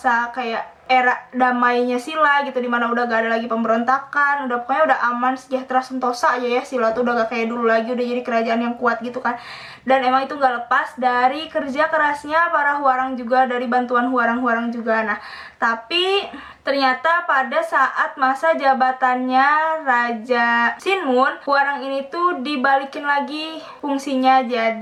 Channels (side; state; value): both; identical; correlation 1.00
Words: kayak era damainya Silla gitu, dimana udah gak ada lagi pemberontakan, pokoknya udah aman, sejahtera, sentosa aja ya. Silla tuh udah gak kayak dulu lagi, udah jadi kerajaan yang kuat gitu kan. Dan emang itu gak lepas dari kerja kerasnya para Hwarang juga, dari bantuan Hwarang juga. Nah, tapi ternyata pada saat masa jabatannya Raja Sinmun, Hwarang ini tuh dibalikin lagi fungsinya